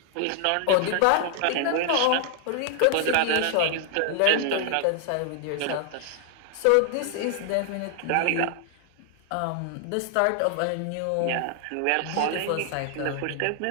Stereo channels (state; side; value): different; both; correlation 0.00